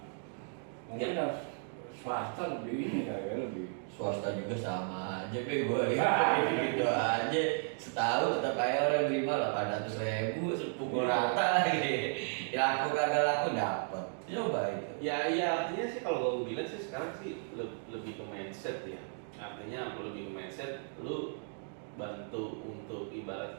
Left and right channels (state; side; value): silent; left; 55 dB below the other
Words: Mungkin harus swasta lebih ini kali ya, lebih. Swasta juga sama aja, gue gitu aja. Setahun tetap kayak orang terima 800.000, pukul rata lagi. Ya aku kagak laku dapat. Coba itu. ya artinya sih kalau gue bilang sih sekarang sih lebih ke mindset ya. Artinya lebih ke mindset, lu bantu untuk ibarat